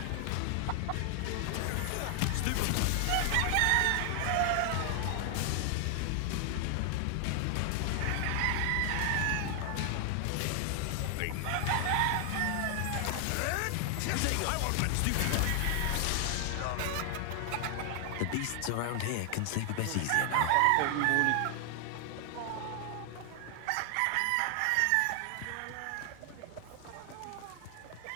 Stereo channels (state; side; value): different; both; correlation 0.00